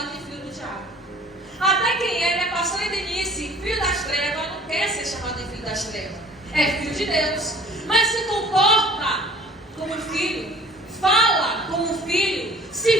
de filho do diabo. Até quem é, né, pastor Denise, filho das trevas, não quer ser chamado de filho das trevas. É filho de Deus. Mas se comporta como filho, fala como filho,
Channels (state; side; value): normal; both; correlation 0.50